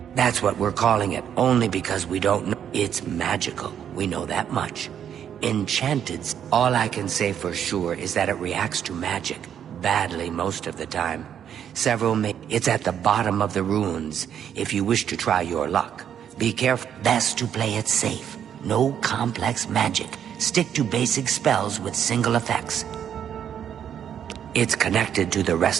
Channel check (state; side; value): quieter; left; 9.1 dB